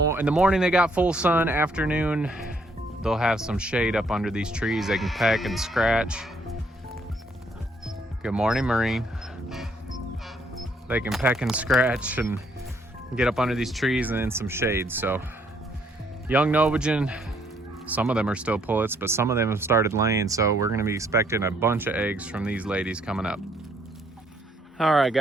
the morning they got full sun. Afternoon they'll have some shade up under these trees. They can peck and scratch. Good morning, Marine. They can peck and scratch and get up under these trees and in some shade. So young Novagen, some of them are still pullets, but some of them have started laying. So we're gonna be expecting a bunch of eggs from these ladies coming up. All right,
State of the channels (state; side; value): normal; both; correlation 0.68